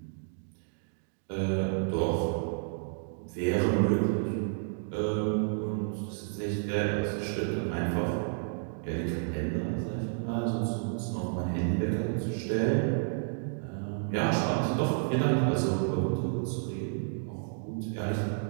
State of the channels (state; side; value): silent; left; digital silence